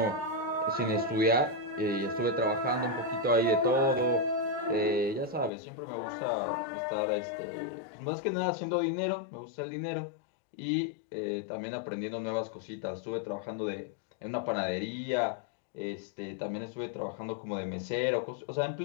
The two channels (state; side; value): drops out; right; at 5.5 s